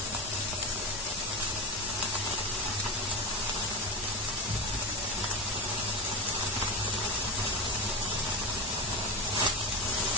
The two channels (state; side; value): normal; both; correlation 0.20